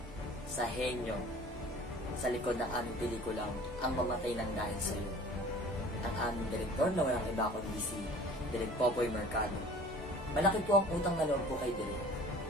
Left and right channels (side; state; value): both; normal; correlation 0.46